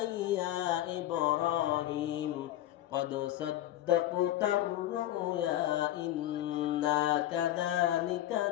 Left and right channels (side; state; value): right; quieter; 13.6 dB